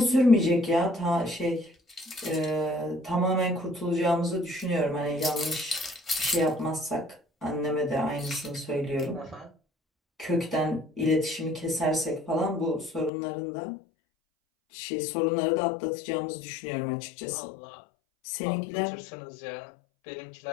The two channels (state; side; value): drops out; right; at 13.1 s